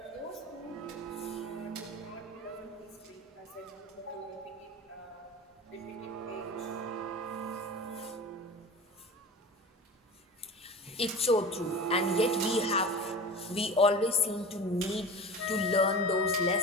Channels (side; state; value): both; normal; correlation 0.33